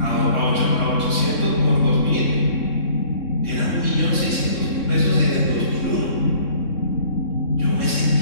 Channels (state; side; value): late; right; 3.6 ms